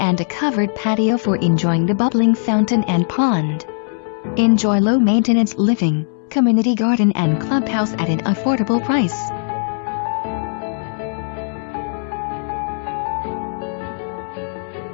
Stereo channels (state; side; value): silent; right; 66 dB below the other